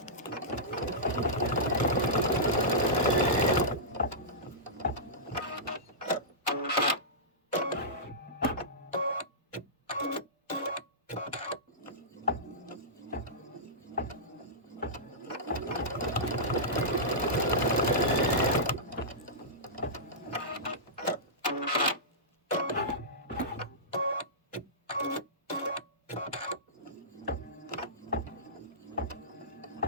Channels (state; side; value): normal; both; correlation -0.17